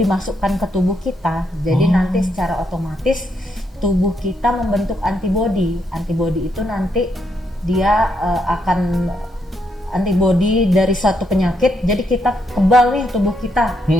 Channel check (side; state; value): both; normal; correlation 0.77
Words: ke tubuh kita. Jadi nanti secara otomatis tubuh kita membentuk antibodi. Antibodi itu nanti dia akan antibodi dari suatu penyakit. Jadi kita kebal nih tubuh kita.